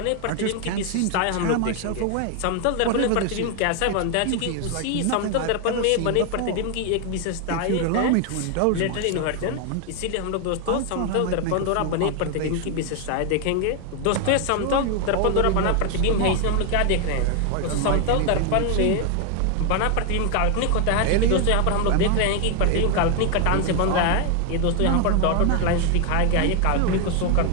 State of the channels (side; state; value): both; different; correlation 0.01